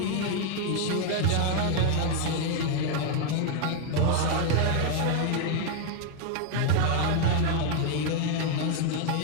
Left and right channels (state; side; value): different; both; correlation 0.00